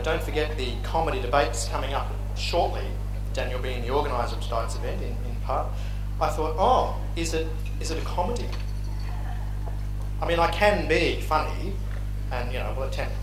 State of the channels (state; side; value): identical; both; correlation 1.00